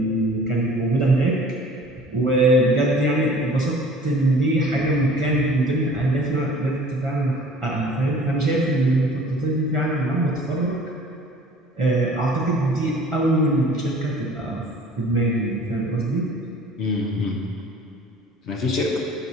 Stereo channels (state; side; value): normal; both; correlation 0.48